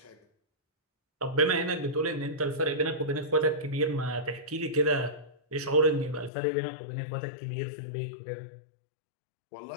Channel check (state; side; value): drops out; right; at 6.3 s